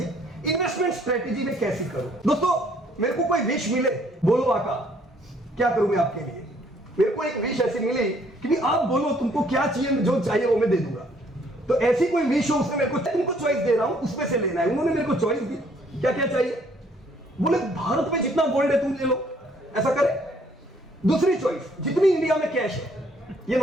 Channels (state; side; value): normal; both; correlation 0.64